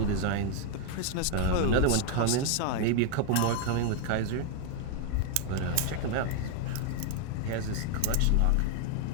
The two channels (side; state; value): both; different; correlation 0.00